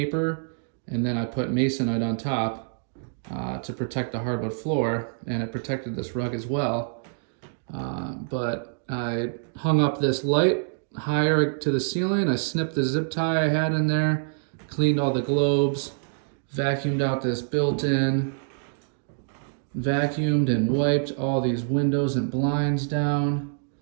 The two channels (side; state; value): left; silent; digital silence